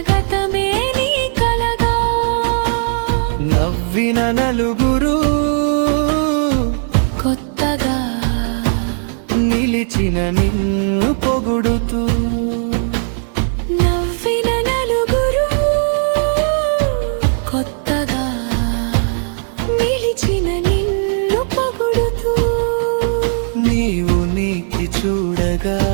గతమే నీ కలగా నవ్విన నలుగురు కొత్తగా నిలిచిన నిన్ను పొగుడుతూ నవ్విన నలుగురు కొత్తగా నిలిచిన నిన్ను పొగుడుతూ నీవు నీకి చూడగా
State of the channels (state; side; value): silent; left; 64 dB below the other